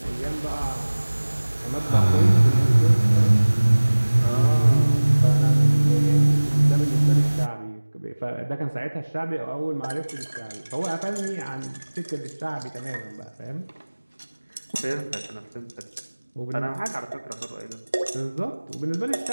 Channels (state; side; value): inverted; both; correlation -1.00